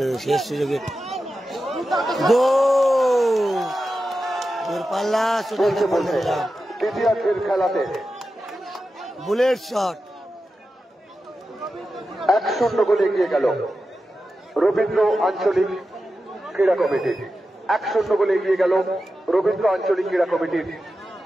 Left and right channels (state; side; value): normal; both; correlation 0.91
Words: শেষ সুযোগে দূরপাল্লা দ্বিতীয়ার্ধের খেলাতে বুলেট শট 1-0 গোলে এগিয়ে গেল রবীন্দ্র আঞ্চলিক ক্রীড়া কমিটি। 1-0 গোলে এগিয়ে গেল রবীন্দ্র আঞ্চলিক ক্রীড়া কমিটির।